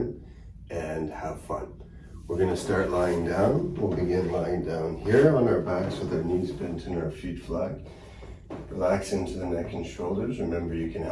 and have fun. We're going to start lying down. We'll begin lying down here on our backs with our knees bent and our feet flat. Relax into the neck and shoulders. Remember, you can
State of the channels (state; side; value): identical; both; correlation 1.00